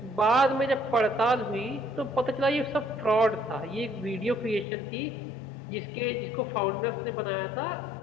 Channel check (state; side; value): drops out; right; at 4.7 s